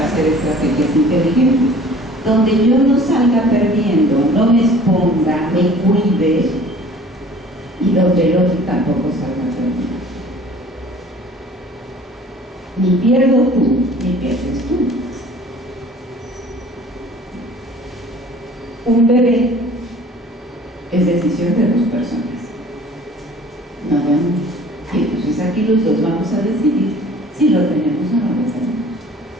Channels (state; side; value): normal; both; correlation 0.49